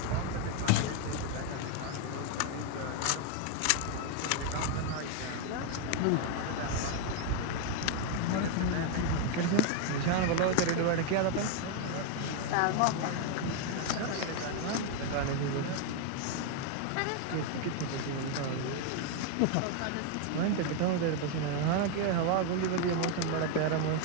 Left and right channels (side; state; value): both; different; correlation 0.01